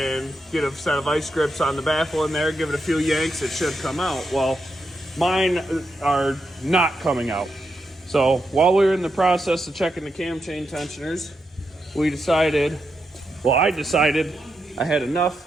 get a set of vice grips on the baffle in there, give it a few yanks, it should come out. Well, mine are not coming out. So while we were in the process of checking the cam chain tensioners, I decided I had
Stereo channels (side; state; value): both; normal; correlation 0.84